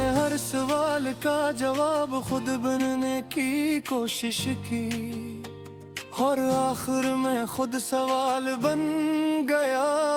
हर सवाल का जवाब खुद बनने की कोशिश की और आखिर में खुद सवाल बन गया।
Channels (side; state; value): both; identical; correlation 1.00